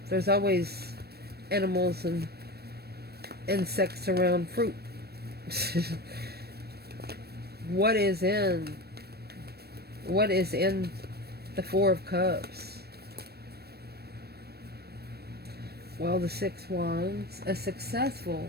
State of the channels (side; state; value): left; late; 0.47 ms